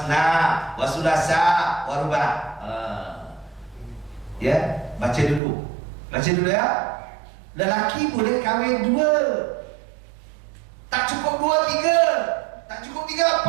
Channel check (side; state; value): left; drops out; at 5.4 s